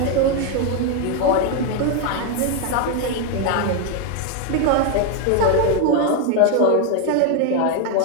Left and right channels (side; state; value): both; different; correlation 0.01